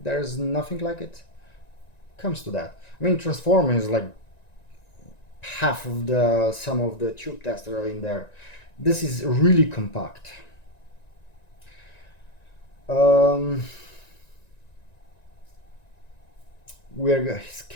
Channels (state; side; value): late; right; 1.9 ms